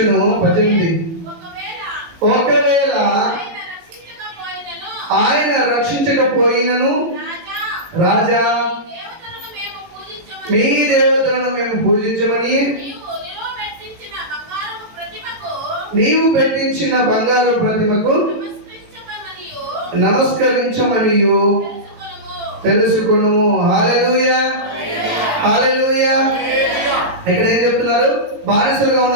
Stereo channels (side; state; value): left; late; 18 ms